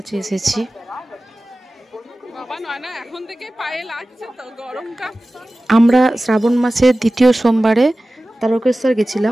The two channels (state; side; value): normal; both; correlation 0.96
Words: এসেছি। আমরা শ্রাবণ মাসের দ্বিতীয় সোমবারে তারকেশ্বর